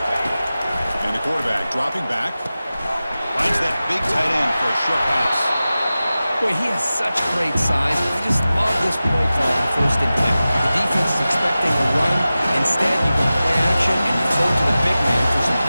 And the quarterback dropping back. Finds that big tight end for a short pass. Boy, he has such great size. I just love this play call on 1st and 10. The defense is expecting a run. Instead, you can play action and you throw to the big man for some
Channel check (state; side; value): inverted; both; correlation -0.95